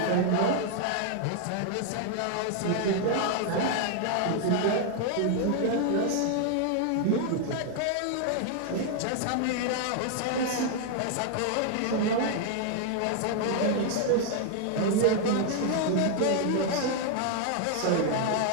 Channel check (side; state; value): both; different; correlation 0.00